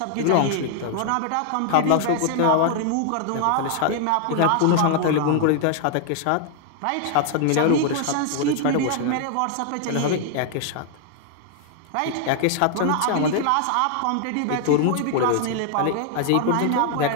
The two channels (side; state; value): both; different; correlation 0.00